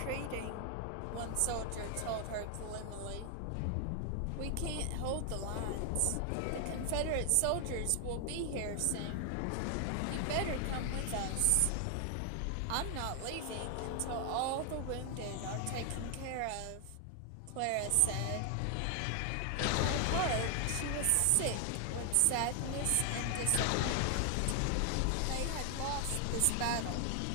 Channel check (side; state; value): both; different; correlation 0.00